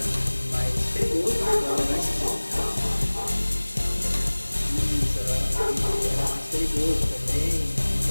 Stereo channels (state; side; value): inverted; both; correlation -1.00